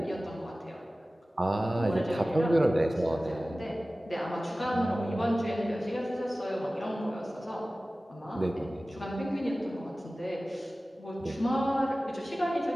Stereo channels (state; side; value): normal; both; correlation 0.97